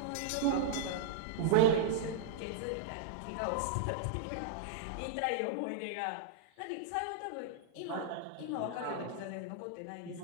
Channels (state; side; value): different; both; correlation -0.01